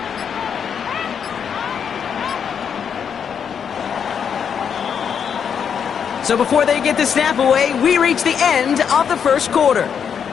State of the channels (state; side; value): quieter; right; 7.4 dB